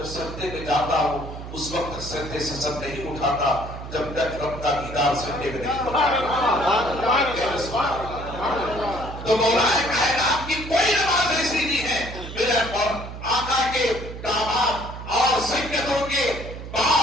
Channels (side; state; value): right; noise; hum, 10 dB below the sound